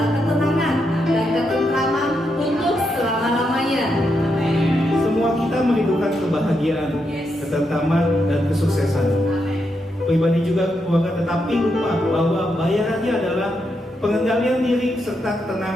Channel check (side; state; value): both; normal; correlation 0.82